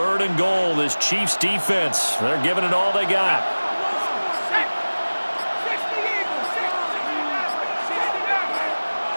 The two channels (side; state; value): both; inverted; correlation -1.00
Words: and goal. This Chiefs defense, they're giving it all they got.